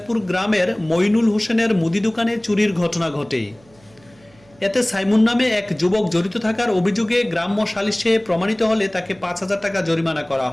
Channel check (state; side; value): noise; right; hum, 29 dB below the sound